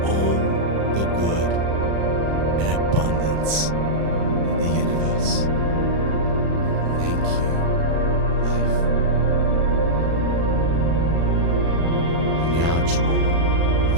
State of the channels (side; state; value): left; late; 36 ms